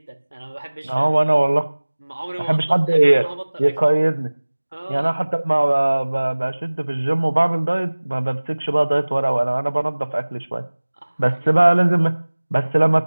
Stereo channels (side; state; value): both; inverted; correlation -1.00